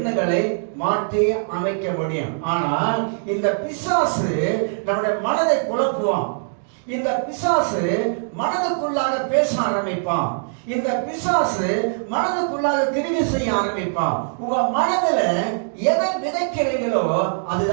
மாற்றி அமைக்க முடியும். ஆனால் இந்த பிசாசு நம்முடைய மனதை குழப்புவான். இந்த பிசாசு மனதுக்குள்ளாக பேச ஆரம்பிப்பான். இந்த பிசாசு மனதுக்குள்ளாக கிரியை செய்ய ஆரம்பிப்பான். உங்க மனதுல எதை விதைக்கிறீங்களோ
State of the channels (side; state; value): left; silent; digital silence